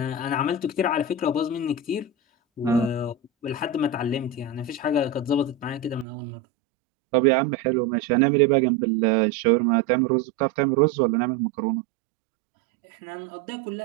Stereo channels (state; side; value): drops out; left; at 6.1 s